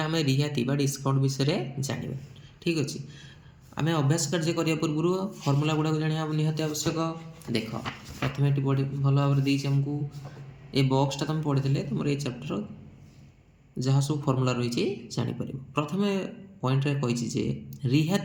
रिहाती डिस्काउंट विषय जाना ठीक अच्छे। आम अभ्यास कार्य करने पूर्व फर्मूला गुड़ाक जाना निहाती आवश्यक। देख प्रथम ये भल भाव आमको ये बक्सटा तुम पढ़ी तुम ये चैप्टर जहाँ सब फर्मूला रही जापर। प्रथम पॉइंट कही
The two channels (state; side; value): identical; both; correlation 1.00